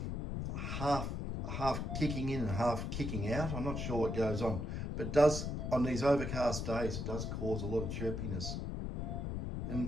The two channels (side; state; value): left; noise; rumble, 3 dB below the sound